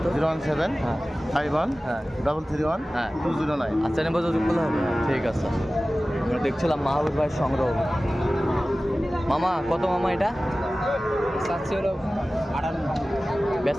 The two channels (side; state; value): both; normal; correlation 0.97